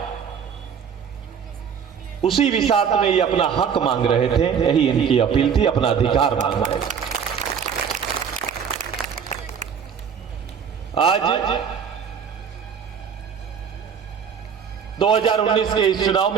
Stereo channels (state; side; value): quieter; left; 7.3 dB